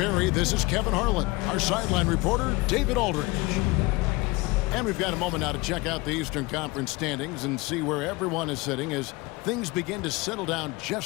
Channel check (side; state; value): right; quieter; 23.2 dB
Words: this is Kevin Harlan. Our sideline reporter, David Aldridge. And we've got a moment now to check out the Eastern Conference standings and see where everyone is sitting as things begin to settle down